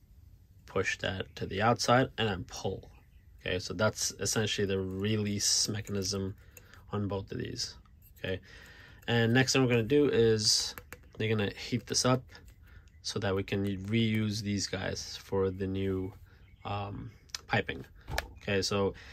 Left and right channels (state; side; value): identical; both; correlation 1.00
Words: push that to the outside and then pull. Okay, so that's essentially the release mechanism on both of these. Okay, and next thing we're gonna do is you're gonna heat this up so that we can reuse these guys for the new piping. Okay, so